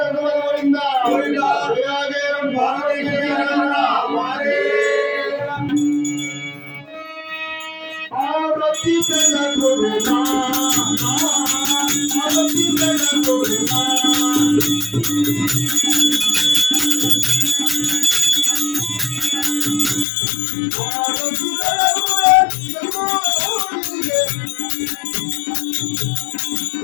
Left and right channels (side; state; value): right; drops out; at 20.1 s